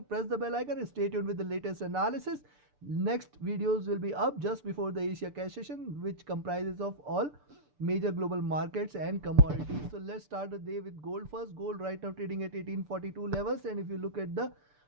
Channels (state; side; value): late; left; 6.8 ms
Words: press the bell icon and stay tuned with the latest analysis. Next videos will be up just before the Asia cash session, which comprises of all major global markets and commodities. So let's start the day with gold first. Gold right now trading at 1842 levels, and if you look at the,